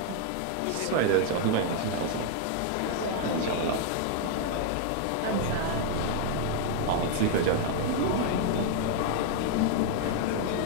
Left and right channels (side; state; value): both; different; correlation 0.00